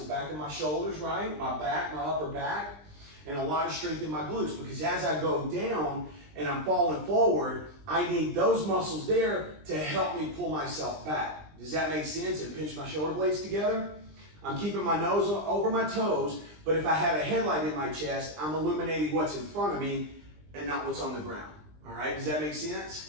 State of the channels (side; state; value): left; late; 20 ms